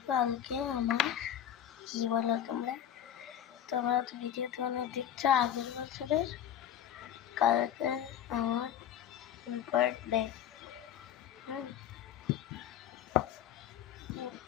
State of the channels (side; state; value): right; quieter; 10.2 dB